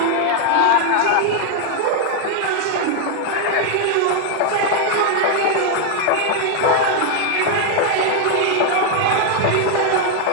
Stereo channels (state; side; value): different; both; correlation 0.00